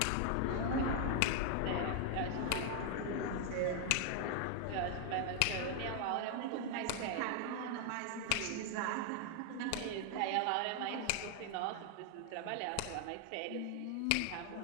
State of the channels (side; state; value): both; different; correlation 0.00